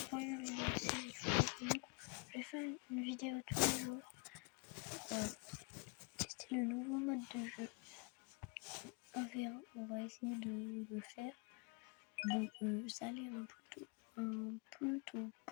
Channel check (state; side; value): quieter; right; 30.8 dB